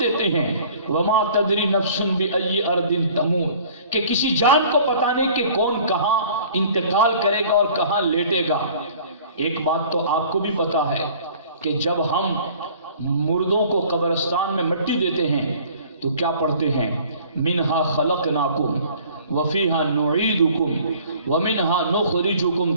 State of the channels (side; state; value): both; inverted; correlation -0.50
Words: دیتے ہیں وما تدری نفس بأی ارض تموت، کہ کسی جان کو پتہ نہیں کہ کون کہاں انتقال کرے گا اور کہاں لیٹے گا۔ ایک بات تو آپ کو بھی پتا ہے کہ جب ہم مردوں کو قبرستان میں مٹی دیتے ہیں تو کیا پڑھتے ہیں؟ منہا خلقناکم وفیہا نعیدکم ومنہا نخرجکم